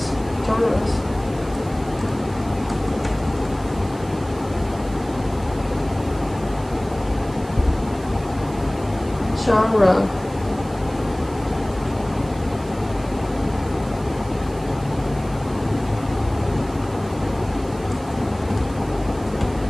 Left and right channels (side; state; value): right; noise; hiss, 22 dB below the sound